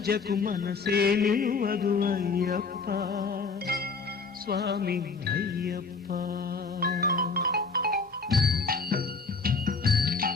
పూజకు మనసే నిలువదు అయ్యప్ప స్వామి అయ్యప్ప.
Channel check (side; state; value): right; quieter; 4.5 dB